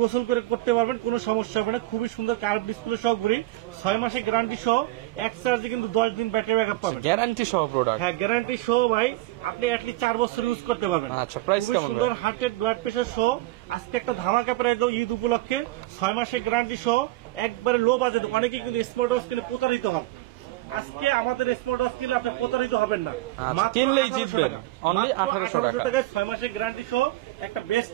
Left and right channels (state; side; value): quieter; left; 18.0 dB